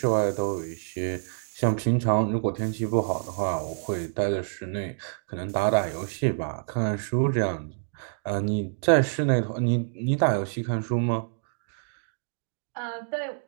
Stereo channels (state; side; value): silent; left; digital silence